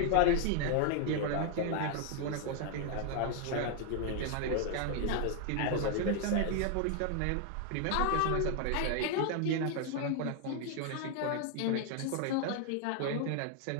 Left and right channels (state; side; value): different; both; correlation 0.00